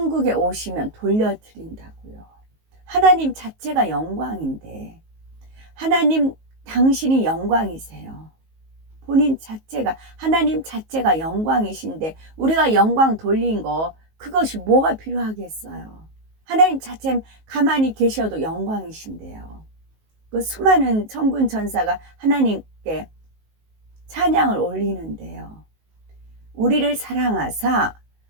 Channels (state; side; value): late; left; 19 ms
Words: 오시면 돌려드린다고요. 하나님 자체가 영광인데 하나님 당신이 영광이세요. 본인 자체가 하나님 자체가 영광이신데 우리가 영광 돌린 거 그것이 뭐가 필요하겠어요. 하나님 자체 가만히 계셔도 영광이신데요. 그 수많은 천군 천사가 하나님께 찬양을 올리는데요. 우리를 사랑하사